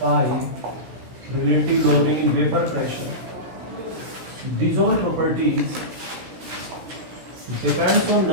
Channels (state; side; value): late; left; 16 ms